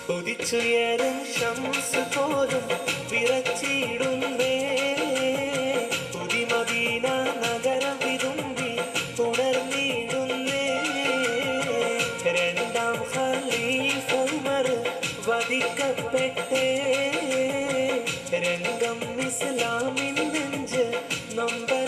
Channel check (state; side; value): identical; both; correlation 1.00